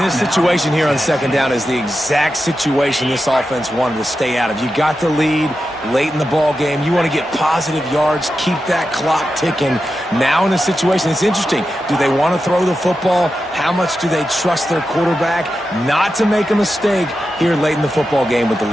situation here on 2nd down is the exact situation this offense wanted to stay out of. You got the lead late in the ball game. You want to get positive yards, keep that clock ticking. Now in a situation, it's interesting. Do they want to throw the football? How much do they trust their quarterback not to make a mistake here late in the football game with the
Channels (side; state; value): both; normal; correlation 0.90